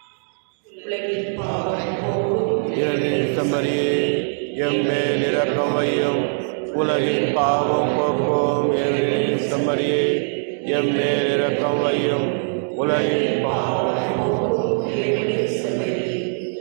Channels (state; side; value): silent; left; digital silence